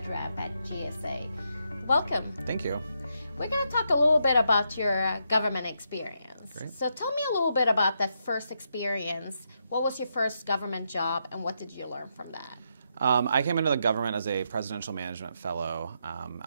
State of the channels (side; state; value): both; inverted; correlation -0.80